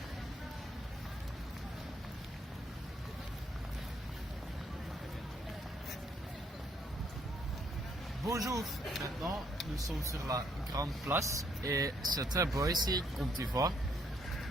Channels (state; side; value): normal; both; correlation 0.69